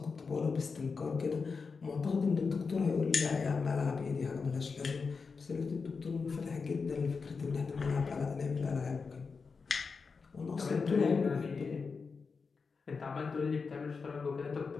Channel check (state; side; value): quieter; right; 5.0 dB